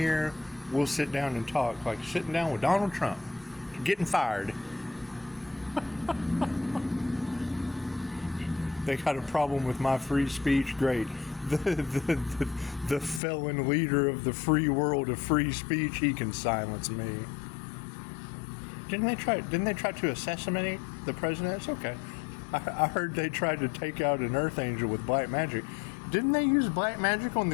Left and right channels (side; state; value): right; drops out; at 13.2 s